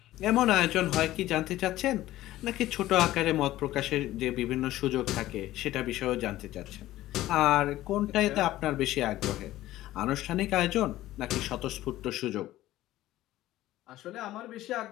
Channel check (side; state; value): right; quieter; 15.3 dB